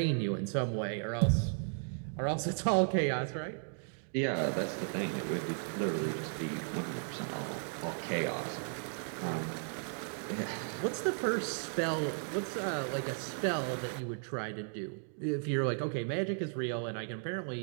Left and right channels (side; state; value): left; silent; 54 dB below the other